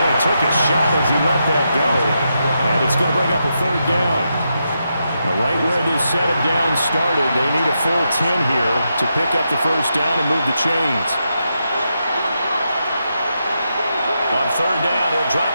he took a shot as he let that go. And it's going to bring up a 3rd down. Now, right where this set of downs started, they need a full 10 here to pick up the 1st down and move the chains. On 3rd down, he'll drop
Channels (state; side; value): inverted; both; correlation -0.84